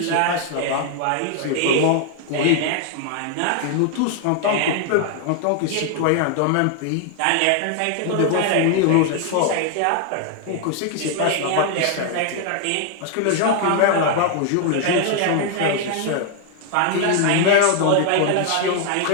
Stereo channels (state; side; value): different; both; correlation 0.00